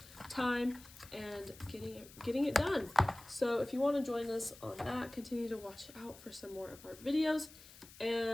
time and getting it done. So if you want to join us on that, continue to watch out for some more of our videos.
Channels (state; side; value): noise; left; hiss, 19 dB below the sound